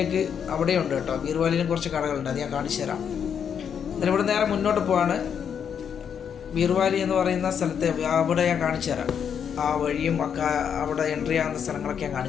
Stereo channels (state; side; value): quieter; right; 7.7 dB